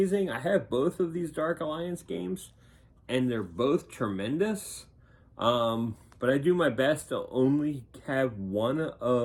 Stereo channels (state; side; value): identical; both; correlation 1.00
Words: I have both of these Dark Alliance games, and they're both tremendous. But I do my best to only have one